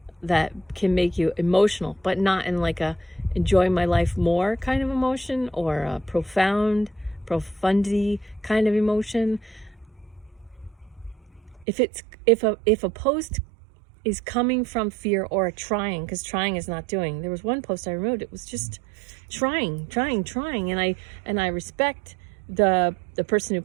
that can make you emotional, but not in a enjoy my life more kind of emotion, or a profundity kind of emotion. If a post is coming from fear or a trying, because trying is not doing. There was one post I removed. It was just trying, and I respect the person who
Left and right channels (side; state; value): left; drops out; at 11.7 s